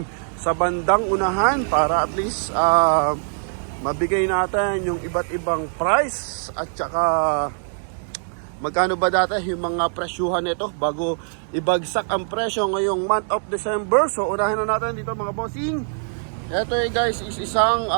sa bandang unahan para at least mabigay natin yung iba't ibang price at saka magkano ba dati yung mga presyuhan nito bago ibagsak ang presyo ngayong month of December. So unahin na natin dito mga bossing. Ito guys is isang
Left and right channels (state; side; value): silent; left; 64 dB below the other